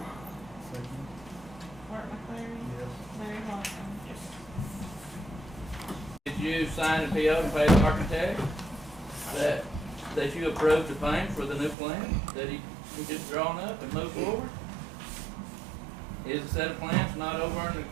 Second. Art McCleary. Yes. Larry Hodson. Did you sign a PO and pay the architect that you approved the paint for the new plan that he just drawn up and moved forward? Is a set of plans not over in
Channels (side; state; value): left; drops out; at 11.8 s